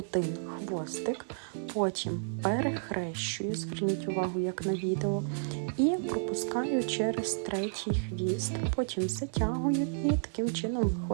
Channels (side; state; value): left; silent; digital silence